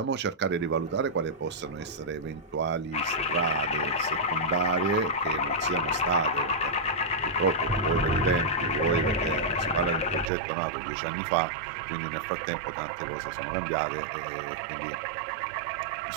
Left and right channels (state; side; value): drops out; left; at 10.3 s